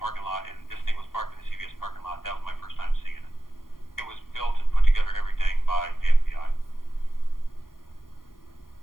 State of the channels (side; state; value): right; late; 0.91 ms